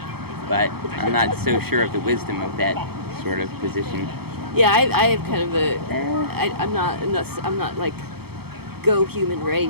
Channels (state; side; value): late; left; 0.96 ms